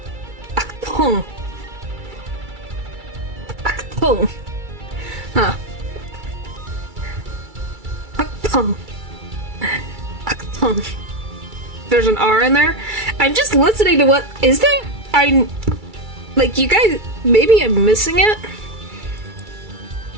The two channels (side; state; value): left; late; 2.3 ms